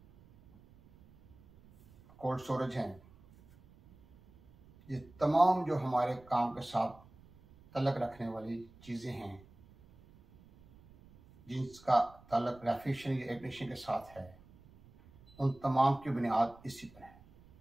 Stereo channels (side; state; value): right; noise; rumble, 25 dB below the sound